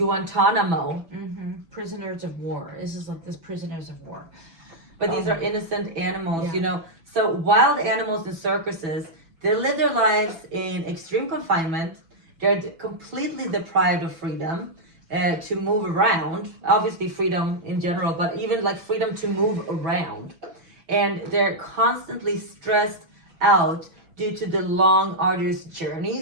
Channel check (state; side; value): late; left; 6.0 ms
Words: Prisoners of war. This is like prisoners of war. But these are innocent animals, So wild animals in circuses, they live their lives in extreme confinement. They're completely deprived of freedom to move around. Obviously freedom in general, but even like freedom to move around. And they're constantly stressed out due to the long, arduous